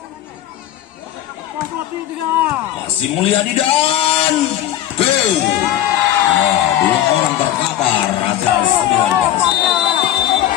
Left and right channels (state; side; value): quieter; right; 12.3 dB